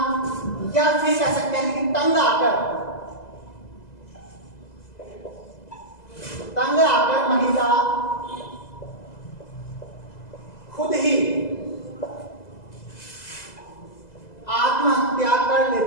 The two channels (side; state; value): right; late; 2.0 ms